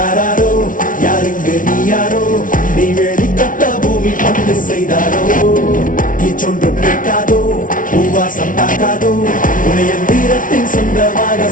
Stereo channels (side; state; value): right; late; 0.38 ms